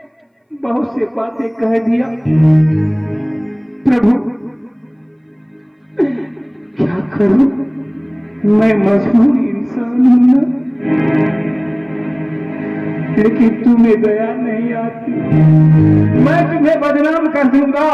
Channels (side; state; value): both; identical; correlation 1.00